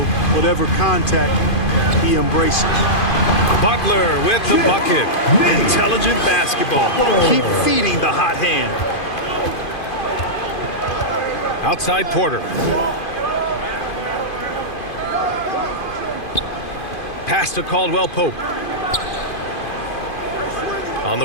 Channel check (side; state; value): right; late; 2.5 ms